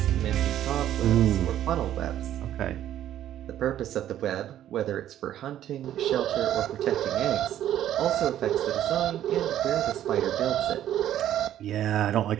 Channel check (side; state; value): left; quieter; 11.7 dB